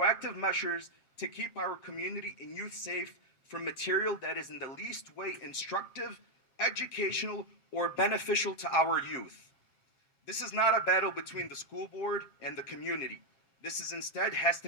measures to keep our community and youth safe from material that is in the least way instructive, educational, or beneficial to our youth. This is not a battle between the school board and the community. This is instead has to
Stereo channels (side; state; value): right; late; 7.5 ms